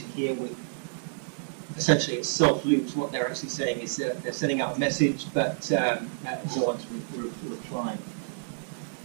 here with, essentially it's self-loops. What they're actually saying is they're sending out a message, but no one's replying.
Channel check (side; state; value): left; silent; digital silence